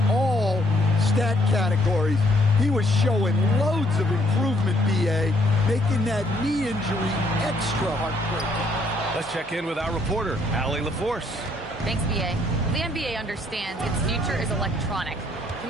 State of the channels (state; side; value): normal; both; correlation 0.68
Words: all stat categories. He was showing loads of improvement, B.A., making that knee injury extra heartbreaking. Let's check in with our reporter, Allie LaForce. Thanks, B.A. The NBA understands its future is electronic.